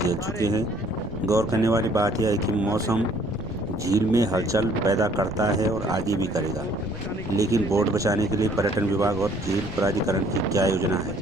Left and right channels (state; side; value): noise; right; rumble, 18 dB below the sound